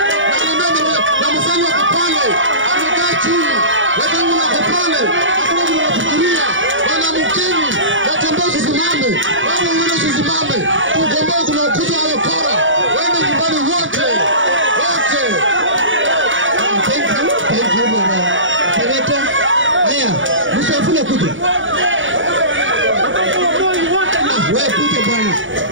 Na msali wa kupale. Amekaa chini. Watangu na kupale. Hakuna mtu anafikiria. Wana mkeni. Watembea tusimame. Wana mwene tusimame. Kugombea kuna ukuta wa kora. Wende nyumbani wote. Wote. Thank you bwana. Seneta. Haya, msafule kuja. Wewe kuja bwana.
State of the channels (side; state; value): left; late; 0.56 ms